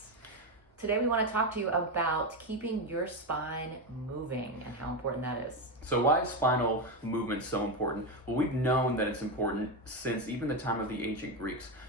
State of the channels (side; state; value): both; normal; correlation 0.12